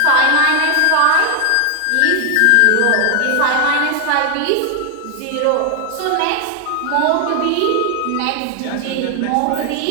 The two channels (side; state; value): both; different; correlation 0.00